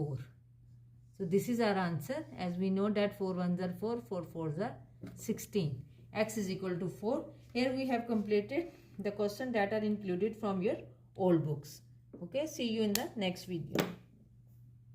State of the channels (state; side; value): identical; both; correlation 1.00